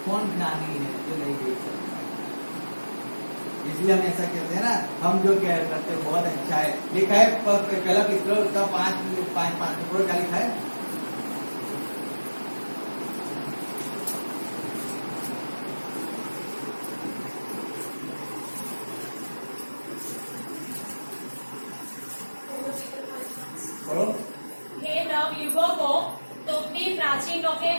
कौन ज्ञानी है जो नहीं देख सकता। इसलिए हम ऐसा कहते हैं ना, हम जो कह करते हैं बहुत अच्छा है। लिखा है पहला पिछला उसका 5 पूरा क्या लिखा है? हे नवयुवकों, तुम भी प्राचीनों के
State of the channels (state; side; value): inverted; both; correlation -1.00